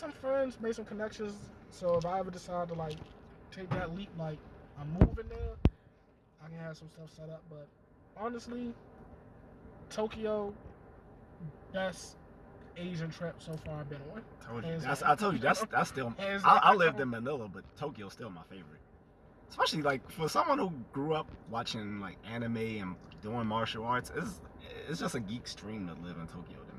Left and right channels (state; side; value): identical; both; correlation 1.00